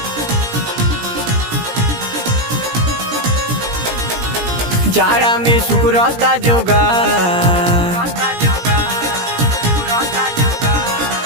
जाड़ा में सुकुरता जोगा,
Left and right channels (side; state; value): left; late; 17 ms